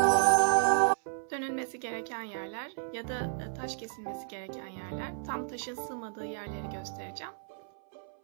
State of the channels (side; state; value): left; silent; 56 dB below the other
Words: Dönülmesi gereken yerler ya da taş kesilmesi gereken yerler, tam taşın sığmadığı yerleri göstereceğim.